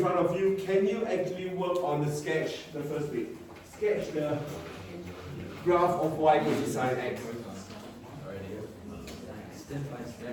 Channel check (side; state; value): both; identical; correlation 1.00